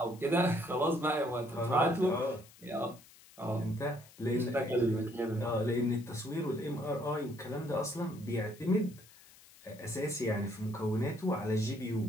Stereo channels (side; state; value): left; noise; hiss, 23 dB below the sound